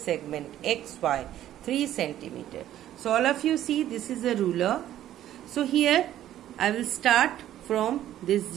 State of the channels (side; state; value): left; quieter; 12.3 dB